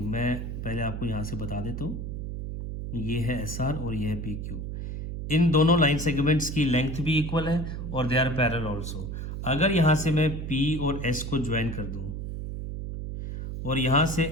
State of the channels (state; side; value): noise; right; hum, 6 dB below the sound